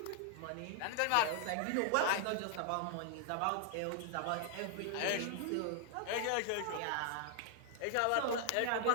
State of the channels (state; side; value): different; both; correlation 0.00